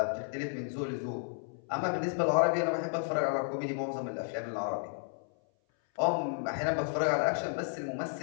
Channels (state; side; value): silent; right; 56 dB below the other